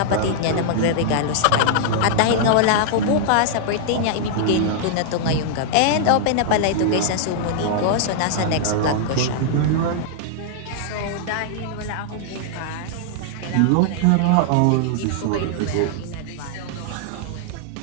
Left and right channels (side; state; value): both; different; correlation -0.01